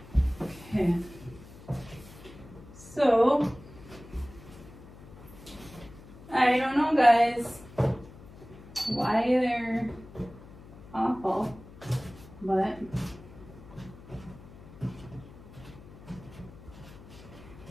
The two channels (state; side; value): noise; left; hum, 18 dB below the sound